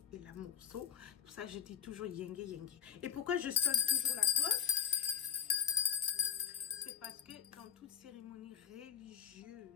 et l'amour. So, pour ça, je dis toujours Yenge, Yenge. Et pourquoi je sonne toujours la cloche? C'est parce que dans toute cérémonie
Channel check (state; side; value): quieter; right; 8.7 dB